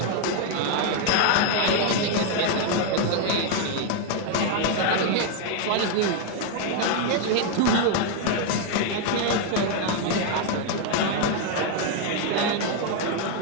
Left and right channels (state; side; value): different; both; correlation 0.01